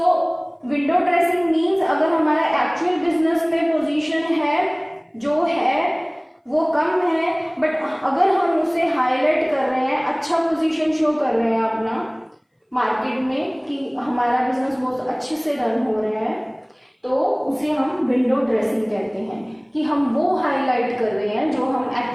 window dressing means अगर हमारा actual business में position है जो है वो कम है, but अगर हम उसे हाईलाइट कर रहे हैं, अच्छा पोजीशन शो कर रहे हैं अपना मार्केट में कि हमारा बिजनेस बहुत अच्छे से रन हो रहा है, तो उसे हम विंडो ड्रेसिंग कहते हैं कि हम वो हाईलाइट कर रहे हैं जो हम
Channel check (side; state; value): both; identical; correlation 1.00